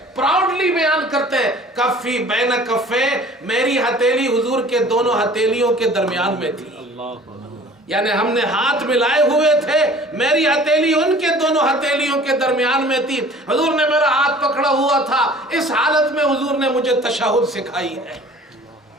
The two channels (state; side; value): normal; both; correlation 0.48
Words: پراؤڈلی بیان کرتے ہیں، کفی بین کفی، میری ہتھیلی حضور کے دونوں ہتھیلیوں کے درمیان میں تھی، یعنی ہم نے ہاتھ ملائے ہوئے تھے، میری ہتھیلی ان کے دونوں ہتھیلیوں کے درمیان میں تھی، حضور نے میرا ہاتھ پکڑا ہوا تھا۔ اس حالت میں حضور نے مجھے تشہد سکھائی ہے۔